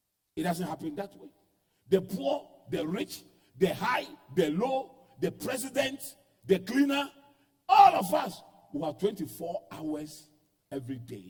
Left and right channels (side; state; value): both; identical; correlation 1.00